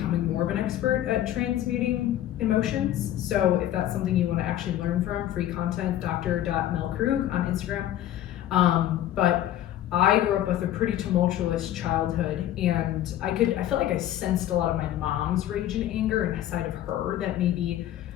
more of an expert at transmuting emotions. So if that's something you want to actually learn from, free content, dr.melkrug on Instagram. But I grew up with a pretty tumultuous childhood, and I felt like I sensed a lot of my mom's rage and anger inside of her that maybe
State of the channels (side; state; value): right; quieter; 12.5 dB